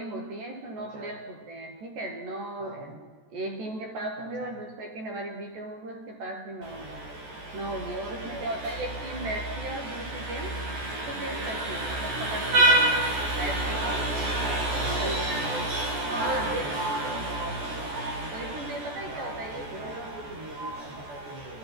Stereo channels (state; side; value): late; left; 14 ms